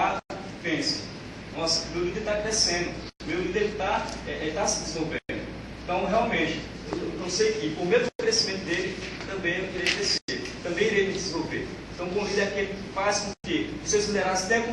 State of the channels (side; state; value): both; identical; correlation 1.00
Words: pensem: nossa, meu líder está crescendo, meu líder está se desenvolvendo. Então, realmente, eu sei que por meio do crescimento dele, também eu irei crescer, também irei me desenvolver. Então, o bom líder é aquele que faz com que os seus liderados tenham